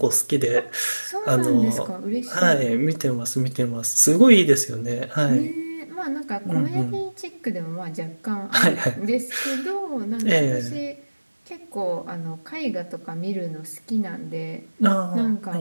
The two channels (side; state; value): both; inverted; correlation -1.00